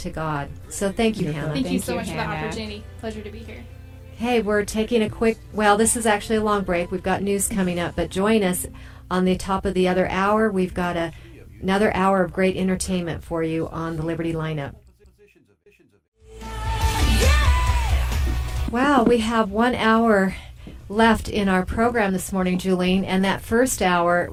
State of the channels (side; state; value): both; identical; correlation 1.00